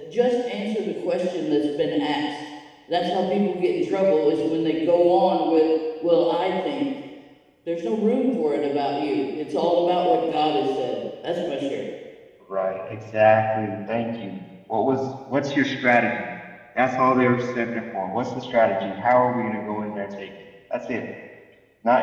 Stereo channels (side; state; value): both; identical; correlation 1.00